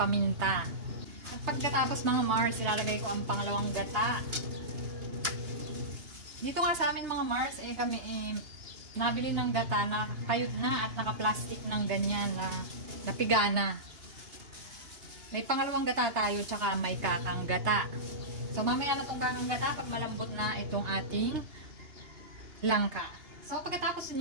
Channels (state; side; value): late; left; 2.8 ms